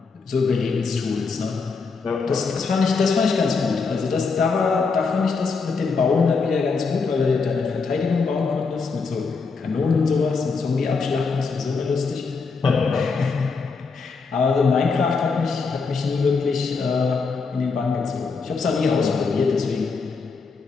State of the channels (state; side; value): quieter; right; 4.7 dB